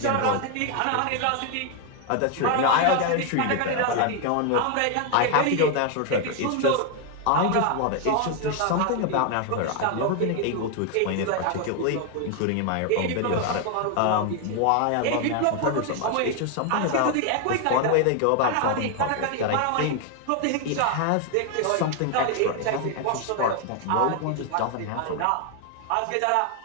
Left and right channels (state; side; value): different; both; correlation 0.01